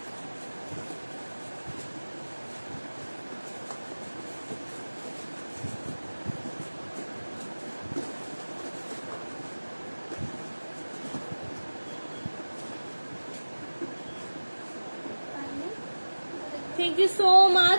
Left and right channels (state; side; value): inverted; both; correlation -1.00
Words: থ্যাংক ইউ সো